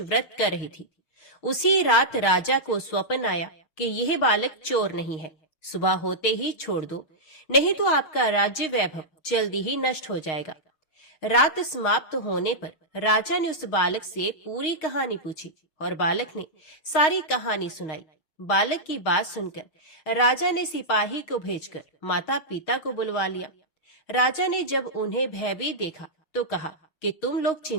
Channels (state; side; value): late; right; 6.4 ms